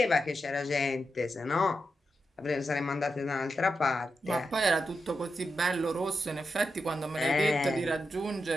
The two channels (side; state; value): both; normal; correlation 0.87